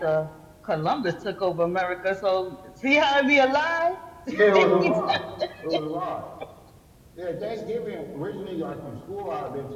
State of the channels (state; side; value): identical; both; correlation 1.00